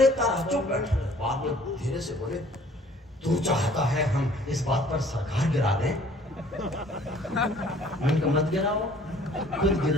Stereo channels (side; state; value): both; normal; correlation 0.55